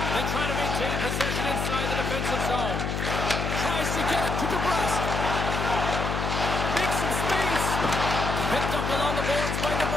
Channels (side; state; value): left; noise; hum, 2 dB below the sound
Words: They try to maintain possession inside the defensive zone. Tries to get it to DeBrusque. Makes some space. Picked up along the boards by